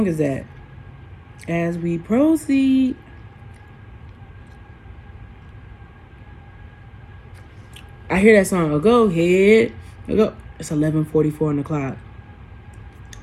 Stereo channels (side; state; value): both; identical; correlation 1.00